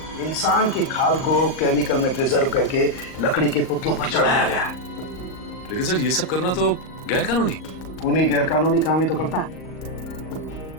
इंसान की खाल को केमिकल में प्रिजर्व करके लकड़ी के पुतलों पर चढ़ाया गया है। लेकिन सर ये सब करना तो गैर कानूनी। खूनी गैर कानूनी काम ही तो करता है।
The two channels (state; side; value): late; right; 38 ms